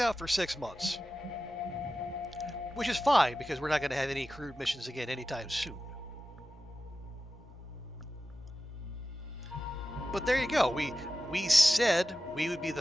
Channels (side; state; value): both; normal; correlation 0.93